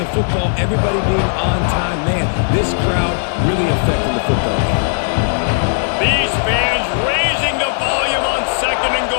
football, everybody being on time. Man, this crowd really affecting the football game. These fans raising the volume on 2nd and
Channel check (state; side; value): silent; right; digital silence